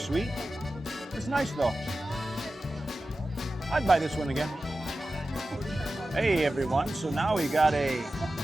It's nice though. I'd buy this one again. Hey everyone, so now we got a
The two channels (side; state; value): both; normal; correlation 0.94